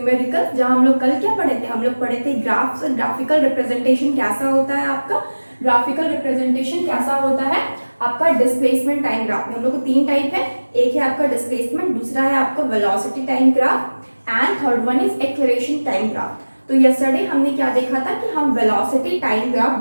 जहाँ हम लोग कल क्या पढ़े थे? हम लोग पढ़े थे ग्राफ्स, ग्राफिकल रिप्रेजेंटेशन कैसा होता है आपका, ग्राफिकल रिप्रेजेंटेशन कैसा होता है आपका डिस्प्लेसमेंट टाइम ग्राफ में। हम लोग को तीन टाइप है, एक है आपका डिस्प्लेसमेंट, दूसरा है आपका velocity time graph and third one is acceleration time graph. तो यस्टरडे हमने क्या देखा था कि हम वेलोसिटी टाइम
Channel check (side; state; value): both; inverted; correlation -1.00